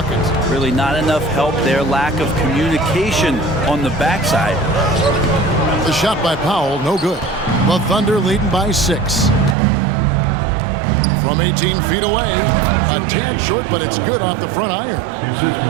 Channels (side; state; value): left; drops out; at 9.6 s